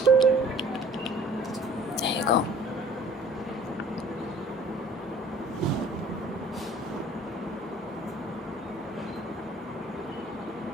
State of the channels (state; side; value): normal; both; correlation 0.51